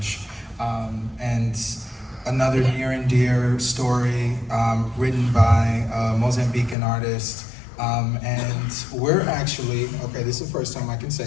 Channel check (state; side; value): drops out; right; at 6.8 s